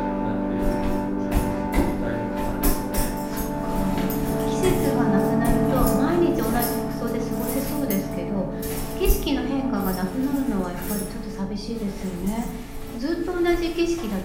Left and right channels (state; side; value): identical; both; correlation 1.00